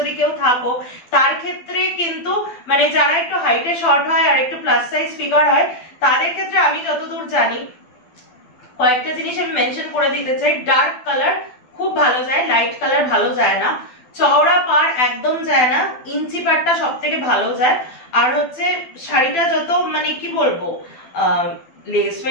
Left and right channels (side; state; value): right; late; 12 ms